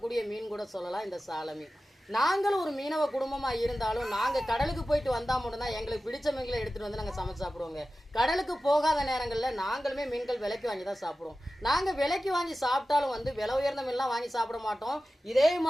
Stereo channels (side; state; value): both; normal; correlation 0.95